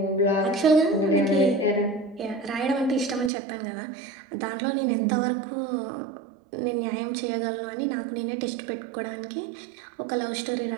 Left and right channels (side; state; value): left; drops out; at 3.3 s